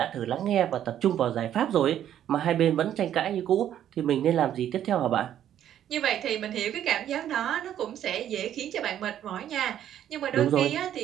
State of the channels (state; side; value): quieter; left; 10.8 dB